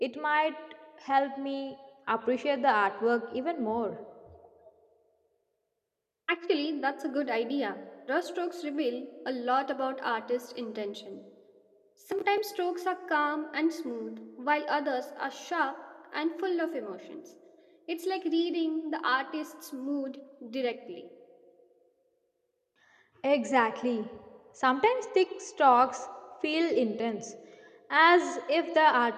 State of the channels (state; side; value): identical; both; correlation 1.00